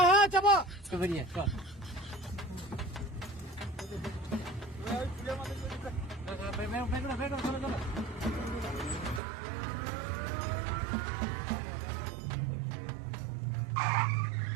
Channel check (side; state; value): left; drops out; at 9.2 s